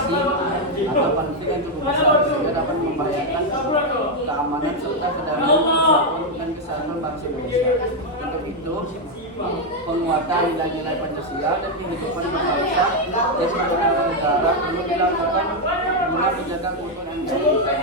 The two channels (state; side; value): normal; both; correlation 0.02